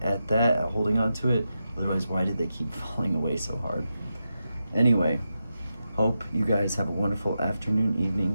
at that, at holding on to it. Otherwise, why did they keep falling away so hard? Anyway, hope you guys have a wonderful afternoon,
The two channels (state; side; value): inverted; both; correlation -0.88